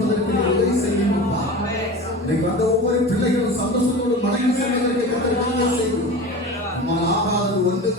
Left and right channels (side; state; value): both; normal; correlation 0.32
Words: உதவி செய்யுங்கப்பா. இன்னைக்கு வந்த ஒவ்வொரு பிள்ளைகளும் சந்தோஷத்தோடு மனைவி செல்வதற்கு கத்தர் செய்யும். ஆகாதது